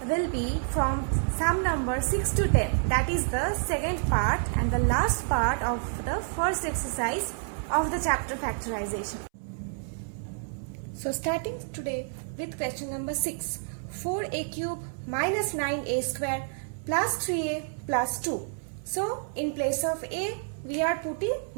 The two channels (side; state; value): left; silent; 59 dB below the other